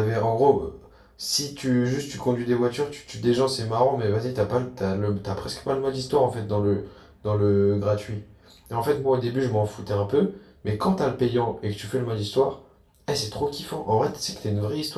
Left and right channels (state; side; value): identical; both; correlation 1.00